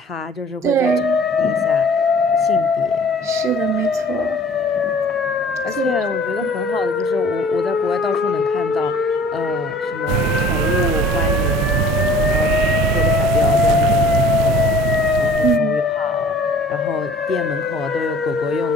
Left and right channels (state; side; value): normal; both; correlation 0.50